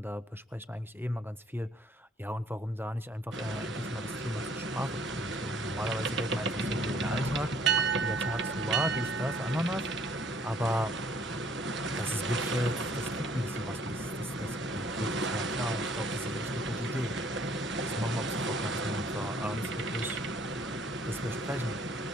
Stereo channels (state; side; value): normal; both; correlation 0.60